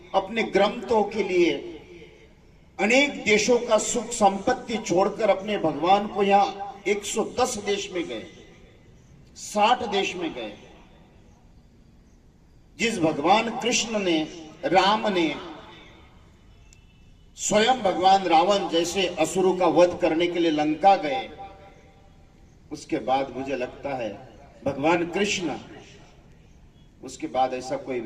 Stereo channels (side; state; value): both; identical; correlation 1.00